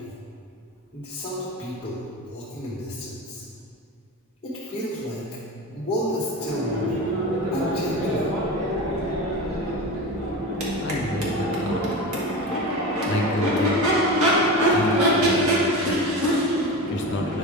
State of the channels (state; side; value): normal; both; correlation 0.26